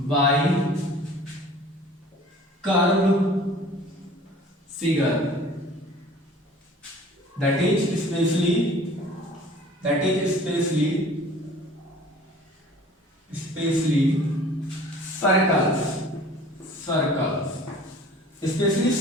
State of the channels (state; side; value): normal; both; correlation 0.48